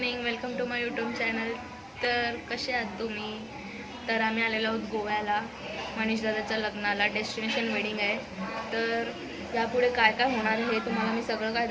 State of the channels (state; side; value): identical; both; correlation 1.00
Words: welcome to my YouTube channel. तर कसे आहात तुम्ही? तर आम्ही आलेलो आहोत गोव्याला मनीष दादाच्या लग्नाला. डेस्टिनेशन वेडिंग आहे. तर यापुढे काय काय होणार आहे हे तुम्हाला मी सगळं काय